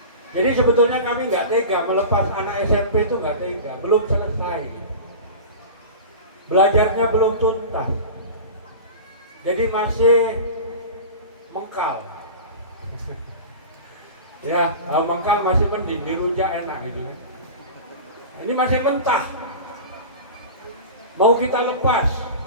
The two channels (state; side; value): inverted; both; correlation -0.32